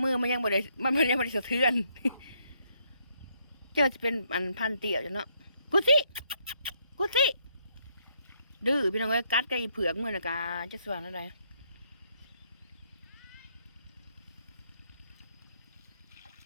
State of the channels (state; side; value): inverted; both; correlation -0.72